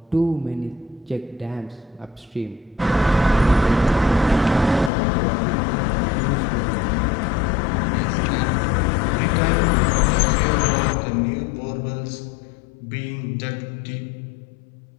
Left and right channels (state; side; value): drops out; right; at 4.9 s